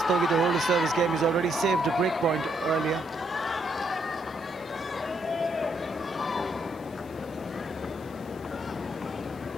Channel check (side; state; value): left; noise; hiss, 26 dB below the sound